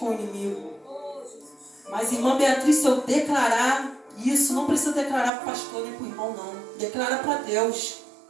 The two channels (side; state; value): left; drops out; at 5.3 s